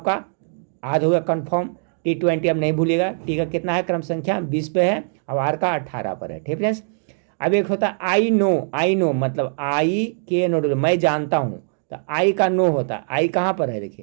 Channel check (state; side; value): silent; left; digital silence